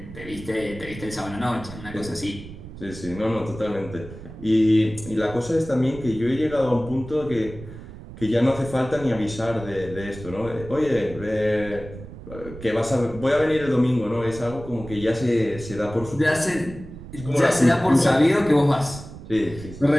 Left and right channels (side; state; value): right; noise; rumble, 14 dB below the sound